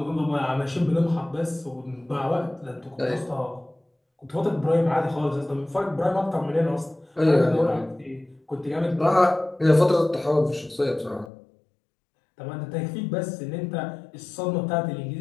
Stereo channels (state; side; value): drops out; right; at 11.3 s